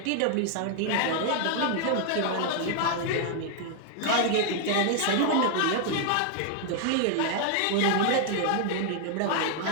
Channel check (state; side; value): different; both; correlation 0.00